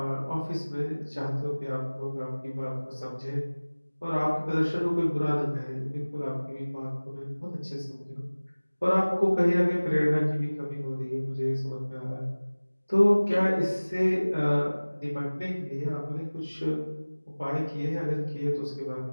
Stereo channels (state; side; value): inverted; both; correlation -1.00